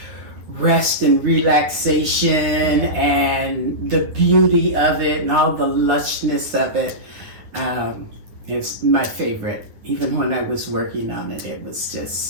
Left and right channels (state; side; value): late; left; 10 ms